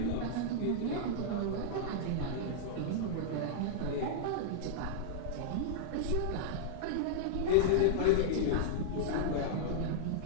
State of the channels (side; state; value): both; different; correlation -0.02